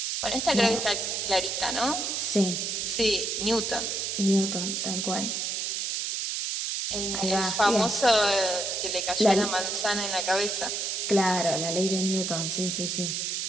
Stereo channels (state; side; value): noise; right; hiss, 1 dB below the sound